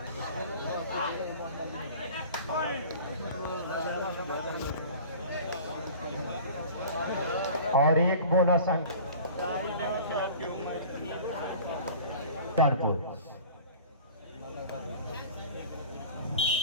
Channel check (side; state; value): both; inverted; correlation -0.41